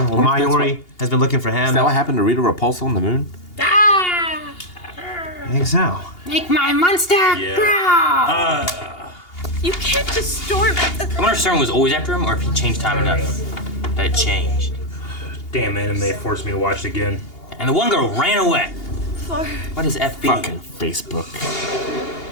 Well, Mayuri has been looking for him. Is that what happened to Rita Repulsa on the moon? I think so. Make my monster growl! You can't just storm it. I wonder if Stern was always after him or if he changed time enough that it changed. Damn anime forced me to watch it again. And the one girl ran away. For... What is FB? Fucking Facebook.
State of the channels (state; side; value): late; right; 2.8 ms